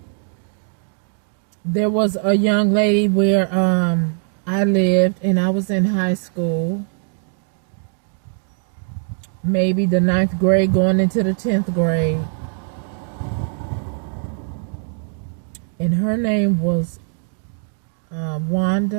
There was a young lady where I lived, and I was in high school, maybe the 9th grade going into the 10th grade. And her name was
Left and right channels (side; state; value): left; silent; digital silence